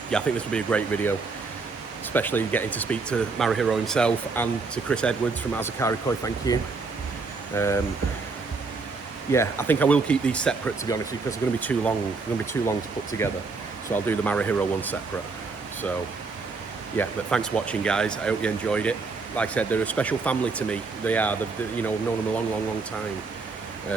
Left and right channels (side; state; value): left; quieter; 4.2 dB